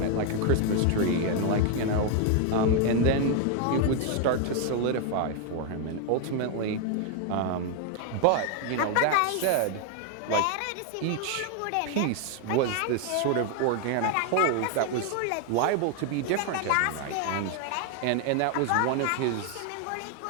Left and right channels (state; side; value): different; both; correlation 0.01